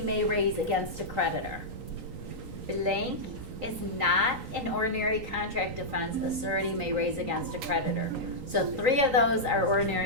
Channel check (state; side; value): late; left; 3.8 ms